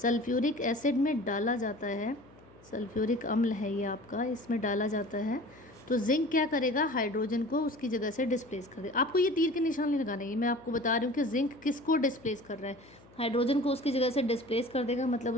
एसिड में डाला जाता है, सल्फ्यूरिक अम्ल है ये आपका, इसमें डाला जाता है, तो जिंक क्या करेगा, हाइड्रोजन को उसकी जगह से डिस्प्लेस कर देगा। आपको ये तीर के निशान नहीं लगाना है, ये मैं आपको बता रही हूँ कि जिंक किसको डिस्प्लेस कर रहा है, हाइड्रोजन को उसकी जगह से डिस्प्लेस कर देगा, मतलब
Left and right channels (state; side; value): noise; left; hum, 25 dB below the sound